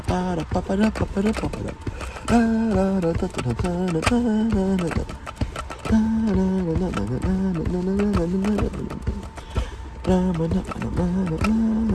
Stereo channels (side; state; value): both; identical; correlation 1.00